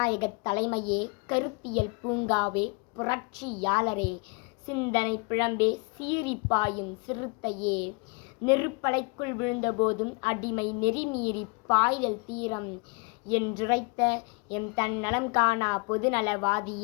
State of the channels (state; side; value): quieter; right; 31.6 dB